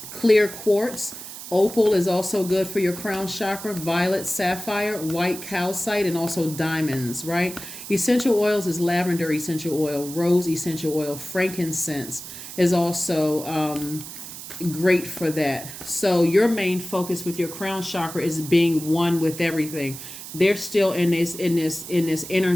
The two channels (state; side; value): noise; right; hiss, 12 dB below the sound